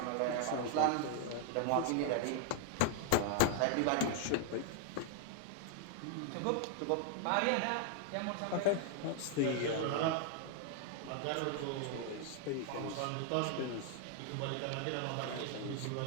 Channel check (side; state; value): both; different; correlation 0.00